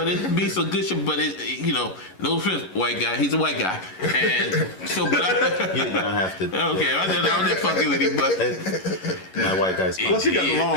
it be some good shit. But it, you know, no offense, white guy. He's a white guy, and so. But you don't have to. Okay, I'm just fucking with him, but my white guy's. Plus, he got the long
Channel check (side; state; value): right; late; 11 ms